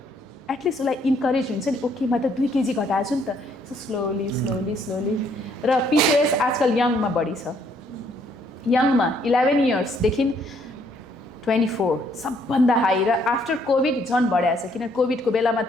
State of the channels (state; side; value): normal; both; correlation 0.67